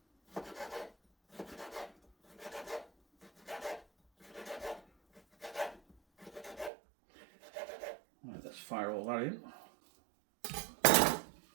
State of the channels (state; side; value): drops out; left; at 6.7 s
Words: Right, let's fire all that in.